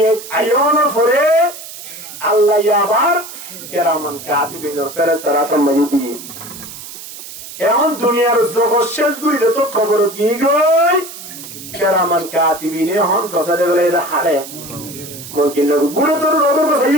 আয়নের পরে আল্লাহ আবার কেরামান কাতিবিনের ফেরেশতারা তোমাকে দিয়ে এখন দুনিয়ার জগৎ শেষ গুলিতে তো খবর দিয়ে গই কেরামান কাতিবিনে এখন গজরে বেড়াইতে হারে মুনকিন নকির গুলো তো রোদর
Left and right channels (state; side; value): noise; right; hiss, 13 dB below the sound